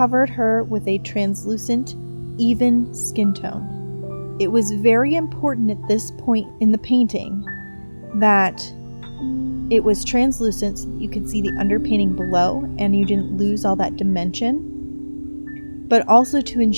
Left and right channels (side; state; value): both; inverted; correlation -1.00